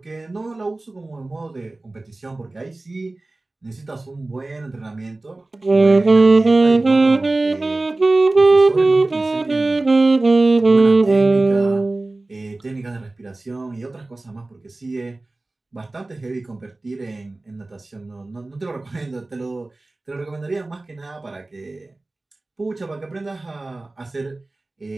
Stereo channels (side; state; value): left; quieter; 3.0 dB